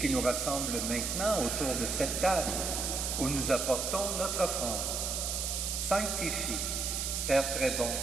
qui nous rassemble maintenant autour de cette table où nous apportons notre offrande. Sanctifie, Père très bon,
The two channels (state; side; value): noise; right; hiss, 1 dB below the sound